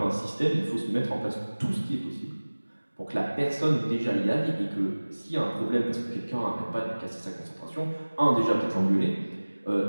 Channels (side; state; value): both; inverted; correlation -1.00